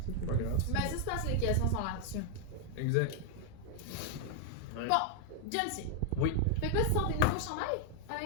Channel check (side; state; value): both; different; correlation 0.00